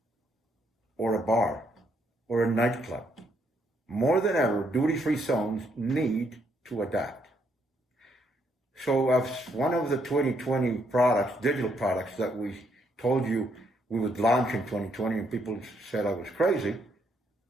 or a bar or a nightclub. More than ever, duty-free zones need to adapt. So as one of the 2020 products, digital products that we told you we would launch in 2020 and people said I was crazy,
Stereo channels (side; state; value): both; normal; correlation 0.73